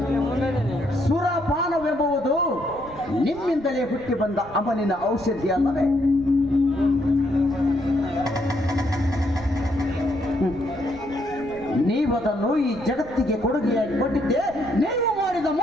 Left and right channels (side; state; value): right; noise; rumble, 19 dB below the sound